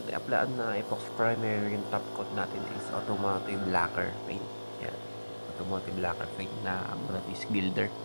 i-applyan na epoxy primer, yung top coat natin is automotive lacquer paint. Ayan, automotive lacquer paint na brand is Gilder.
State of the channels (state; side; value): inverted; both; correlation -1.00